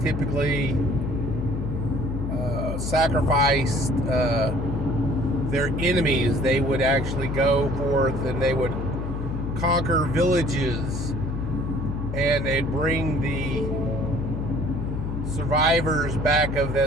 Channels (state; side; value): noise; left; hum, 4 dB below the sound